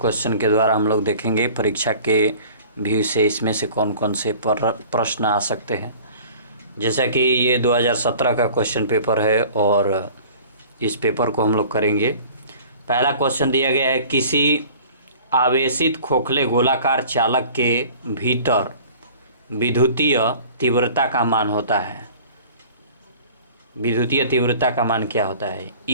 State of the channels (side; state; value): both; inverted; correlation -0.46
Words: क्वेश्चन के द्वारा हम लोग देखेंगे परीक्षा के व्यू से इसमें से कौन कौन से प्रश्न आ सकते हैं। जैसा कि ये 2017 का क्वेश्चन पेपर है और इस पेपर को हम लोग करेंगे। पहला क्वेश्चन दिया गया है, किसी आवेशित खोखले गोलाकार चालक के भीतर विद्युतीय तीव्रता का मान होता है। विद्युतीय तीव्रता का मान क्या होता है?